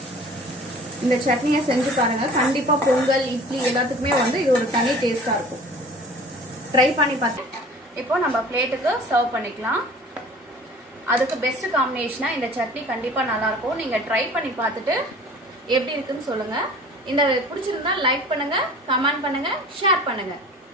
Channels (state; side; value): normal; both; correlation 0.45